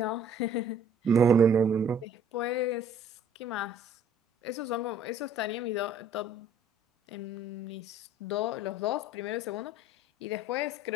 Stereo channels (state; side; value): normal; both; correlation 0.56